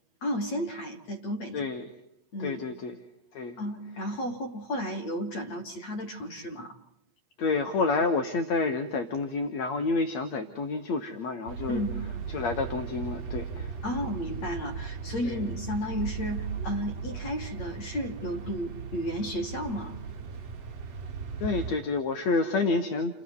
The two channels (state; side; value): late; right; 8.5 ms